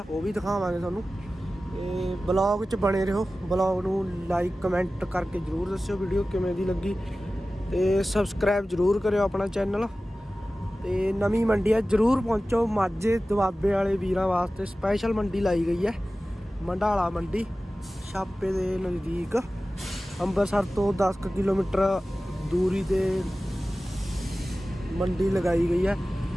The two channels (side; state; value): both; normal; correlation 0.96